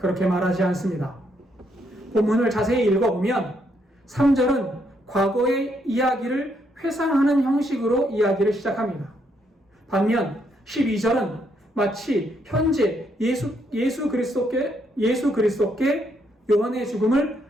말하지 않습니다. 본문을 자세히 읽어보면 3절은 과거의 이야기를 회상하는 형식으로 이야기를 시작합니다. 반면 12절은 마치 현재 예수 그리스도께 요한의 죽음을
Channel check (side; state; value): both; normal; correlation 0.75